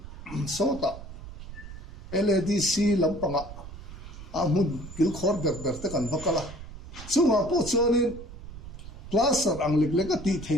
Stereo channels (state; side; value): noise; right; rumble, 13 dB below the sound